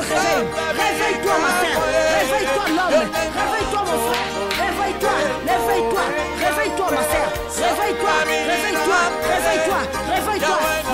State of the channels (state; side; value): identical; both; correlation 1.00